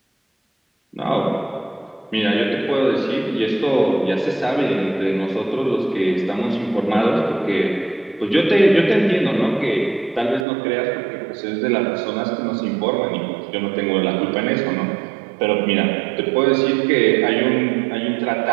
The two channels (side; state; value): left; drops out; at 10.5 s